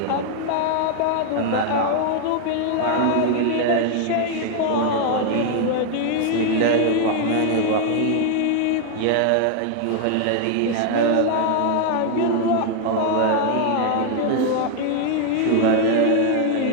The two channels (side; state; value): both; different; correlation 0.00